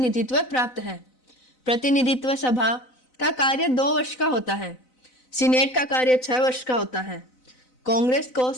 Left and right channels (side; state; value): right; late; 4.0 ms